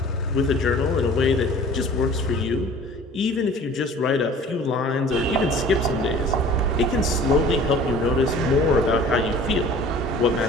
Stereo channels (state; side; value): normal; both; correlation 0.46